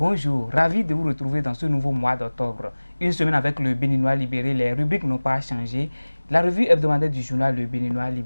Ravi de vous retrouver dans ce nouveau mois d'octobre. Une semaine avec le Béninois libéré, les rubriques n'ont pas changé. La revue hebdomadaire du journal Le Béninois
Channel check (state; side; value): inverted; both; correlation -1.00